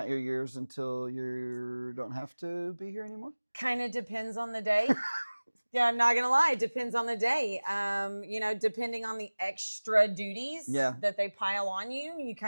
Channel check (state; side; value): inverted; both; correlation -1.00